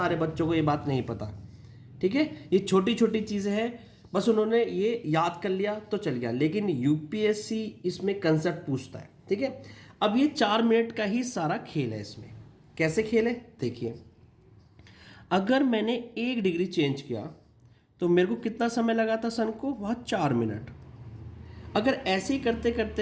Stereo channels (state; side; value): identical; both; correlation 1.00